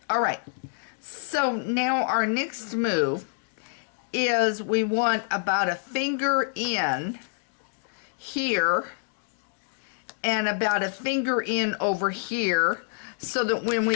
All right. So now our next move is we want about a finger in here and about a finger in over here, so that when we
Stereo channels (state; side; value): silent; right; digital silence